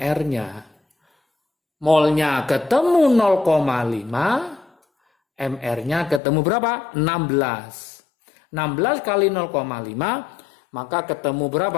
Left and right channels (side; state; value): right; drops out; at 6.2 s